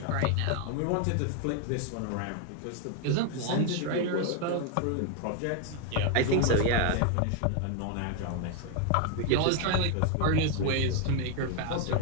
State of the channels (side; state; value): both; different; correlation 0.01